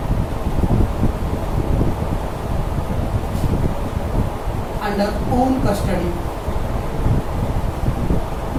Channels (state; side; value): identical; both; correlation 1.00